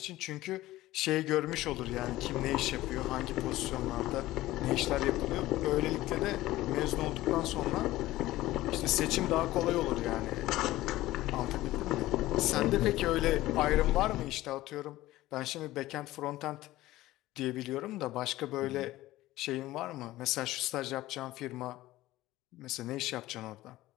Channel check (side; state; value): right; quieter; 16.6 dB